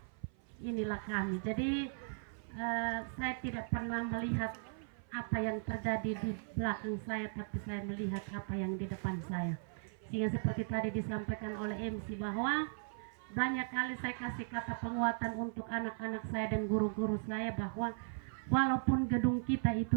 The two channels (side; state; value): left; silent; 53 dB below the other